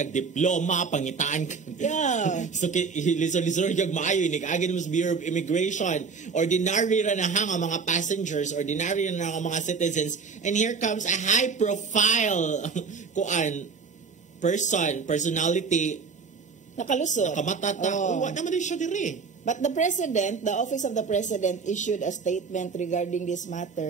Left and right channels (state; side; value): quieter; left; 5.2 dB